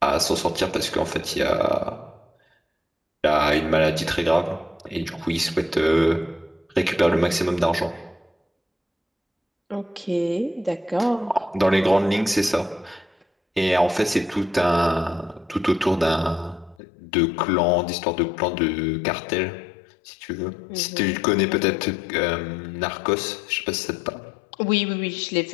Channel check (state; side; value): drops out; right; at 16.8 s